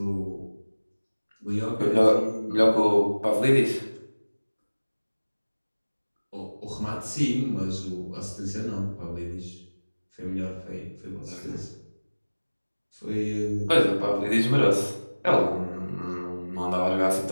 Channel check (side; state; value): both; inverted; correlation -1.00